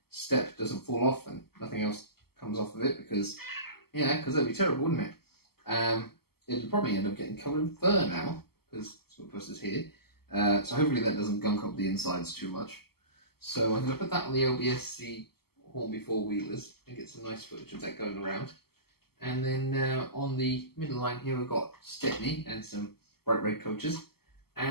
step doesn't fall off and nothing else comes off of it, because, yeah, because that'd be terrible, wouldn't it? It'll probably end up getting covered in fur now, because Smutpuss is here. So hopefully that doesn't gunk up the insides too much. So I'm going to put that on the lb&scr Hornby four-wheelers and get some nice footage of that going around. And then on the middle line here we've got Stepney and some bright red coaches.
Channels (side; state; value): right; late; 0.95 ms